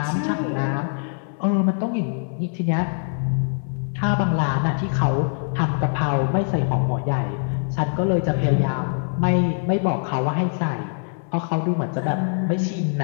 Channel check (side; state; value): right; silent; 60 dB below the other